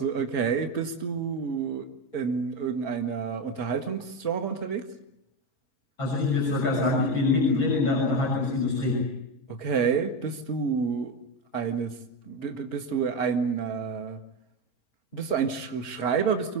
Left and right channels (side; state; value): right; late; 5.6 ms